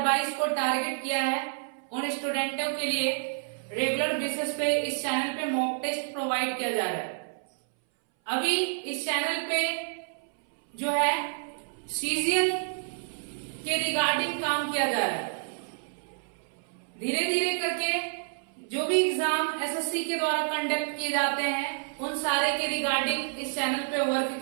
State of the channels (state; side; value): silent; left; 59 dB below the other